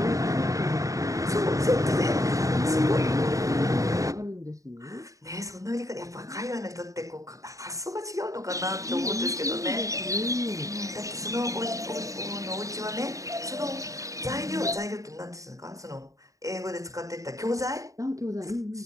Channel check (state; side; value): late; left; 0.16 ms